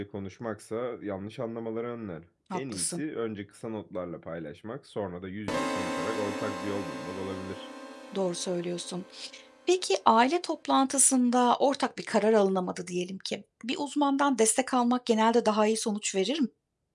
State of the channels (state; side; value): identical; both; correlation 1.00